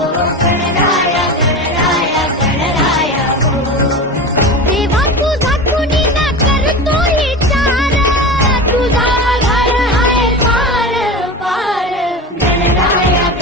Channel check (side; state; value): both; normal; correlation 0.28